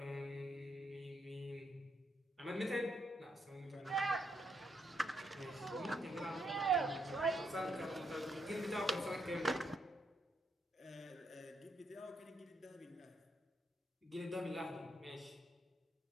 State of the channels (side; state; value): both; normal; correlation 0.77